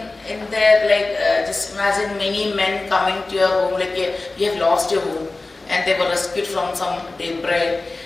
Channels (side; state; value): right; quieter; 3.3 dB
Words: their, like, just imagine many men coming to your home, like you have lost your home, and they were rescued from some debris,